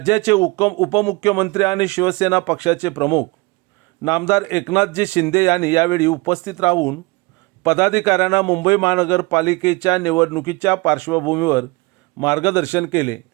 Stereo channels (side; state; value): left; quieter; 25.4 dB